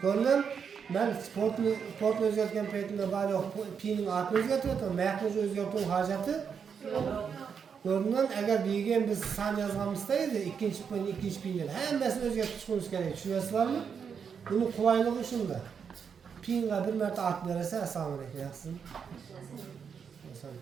Ko'rdim. Ben sportni o'zgartgan paytimda bari piyning atini o'zgartiryapman, mayaqni o'zgartirib hojati. Ko'ringan agar degan biz san yozganimizda edi, ikkinchi piyni hammasini o'zgartirishimiz kerak. Tushunasizlarmi? Buni qulayligi shunda. Piyinga bir marta at bersa, assalomu alaykum, yaxshisiz. Masalan,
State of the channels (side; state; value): left; quieter; 6.8 dB